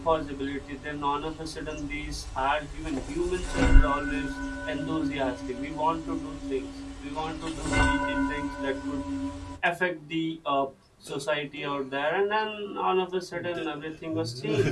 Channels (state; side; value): identical; both; correlation 1.00